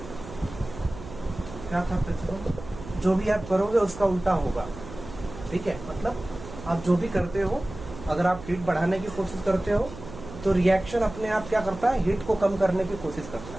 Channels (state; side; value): noise; right; hum, 13 dB below the sound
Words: क्या था प्रिंसिपल, जो भी आप करोगे उसका उल्टा होगा, ठीक है। मतलब आप जो भी करते हो, अगर आप हीट बढ़ाने की कोशिश करते हो तो रिएक्शन अपने आप क्या करता है, हीट को कम करने की कोशिश करता